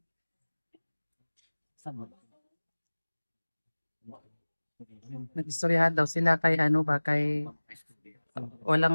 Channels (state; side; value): inverted; both; correlation -1.00